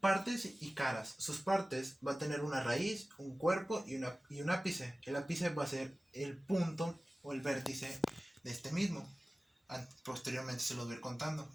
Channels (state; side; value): normal; both; correlation 0.97